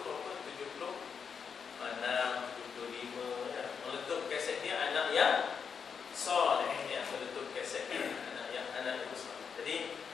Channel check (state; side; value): quieter; right; 6.4 dB